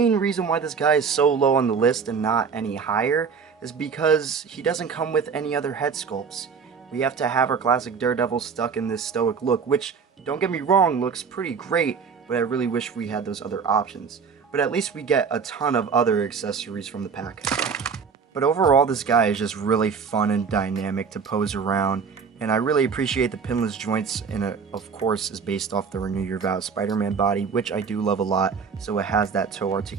reason why this guy is so low on the list and not any higher is because he doesn't come with any other head sculpts. We have to have our classic Daredevil stuck in this stoic look, which, don't get me wrong, looks pretty great, but I really wish we had those other options. But at least we get a ton of other accessories from the pack. But overall, this guy is just really fun and dynamic to pose around. And I really appreciate the pinless joints, and it, of course, is based off the Renew Your Vows Spider-Man body, which I do love a lot, so it has that toe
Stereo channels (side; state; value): left; quieter; 6.0 dB